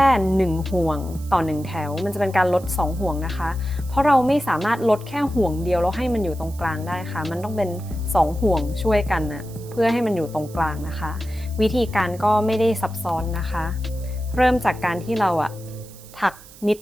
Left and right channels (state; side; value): noise; right; hiss, 21 dB below the sound